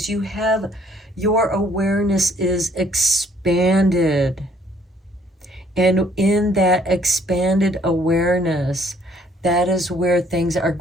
you have, your awareness is expanded. And in that expanded awareness, that is where things are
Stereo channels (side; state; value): both; normal; correlation 0.63